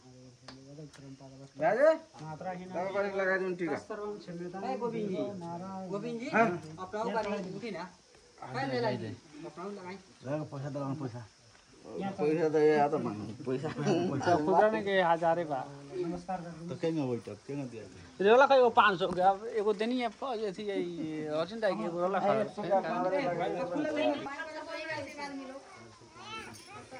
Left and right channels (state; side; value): identical; both; correlation 1.00